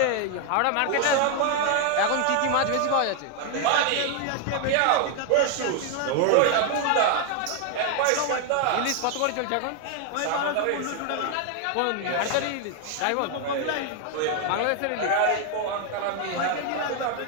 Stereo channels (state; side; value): different; both; correlation 0.00